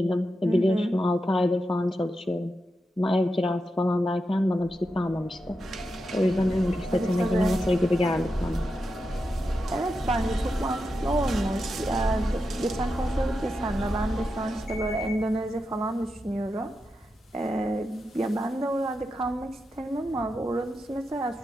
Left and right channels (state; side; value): normal; both; correlation 0.88